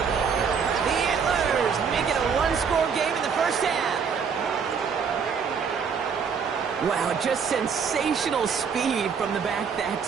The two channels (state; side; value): quieter; left; 6.3 dB